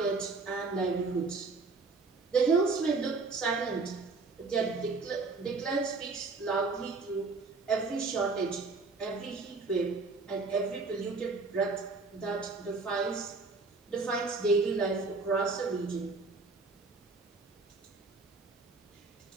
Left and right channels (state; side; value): quieter; left; 4.0 dB